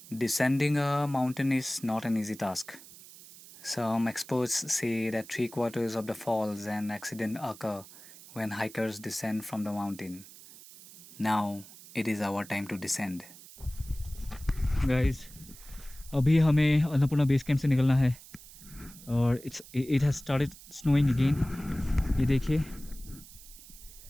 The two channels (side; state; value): right; noise; hiss, 19 dB below the sound